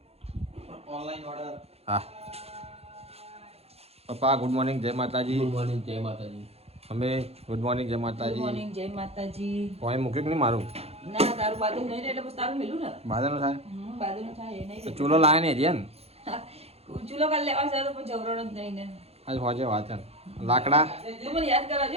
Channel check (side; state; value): left; late; 0.29 ms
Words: ઓનલાઈન ઓર્ડર હા પપ્પા ગુડ મોર્નિંગ જય માતાજી ગુડ મોર્નિંગ જય માતાજી અમે ગુડ મોર્નિંગ જય ગુડ માતાજી મોર્નિંગ જય માતાજી પોઈ મૂક્યું કે નહીં મારું ના તારું બાજુ નહીં એટલે બસ તારું મેલું ને બાદલ થાય બાજુનું થાય એ નહીં તો ચૂલો લાવે ને રિયન ચૂલો કાલ લેવા છે તો પણ જવરણ જ નહીં ને આજ હોજે વાત છે લાકડા તો મને યાદ